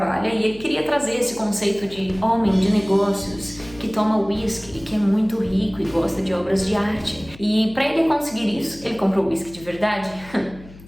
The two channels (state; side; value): noise; left; hum, 20 dB below the sound